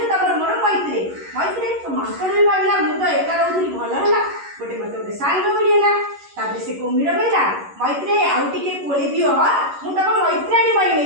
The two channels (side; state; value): left; late; 11 ms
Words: ତମର ମୋର ମୈତ୍ରେ। ତ ମାଙ୍କଡ ବି ଭାବିଲା ମୁଁ ତ ଏକା ରହୁଥିଲି, ଭଲ ହେଲା, ମତେ ଗୋଟେ ସାଙ୍ଗ ମିଳିଗଲା। ତାପରେ ସେ କୁମ୍ଭୀର କହିଲା ମୈତ୍ରେ ଆଉ ଟିକେ କୋଳି ଦିଅ, ମୁଁ ତମ ମୈତ୍ରାଣୀ